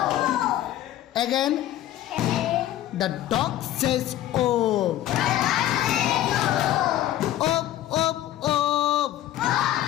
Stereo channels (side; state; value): right; quieter; 13.1 dB